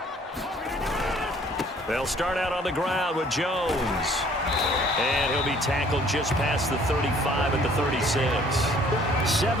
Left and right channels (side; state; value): both; normal; correlation 0.57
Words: They'll start out on the ground with Jones. And he'll be tackled just past the 35 at the 36.